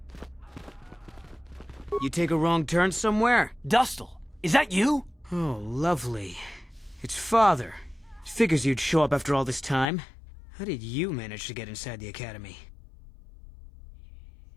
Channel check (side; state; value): right; drops out; at 9.9 s